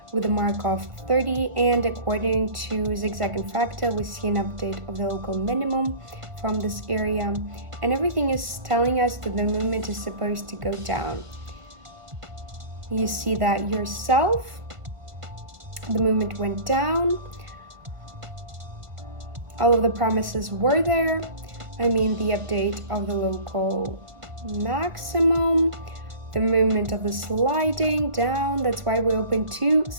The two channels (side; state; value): left; late; 1.5 ms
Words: with a mark of 30, and according to zigzag and fractal, we see an update of the local minimum from this area, and everything is telling us that the movement is supposed to go down. You see that yourself, the movement went down. All of the promises were there. I mean, the update of the local maximum, the movement of the sliding down. That's why we open to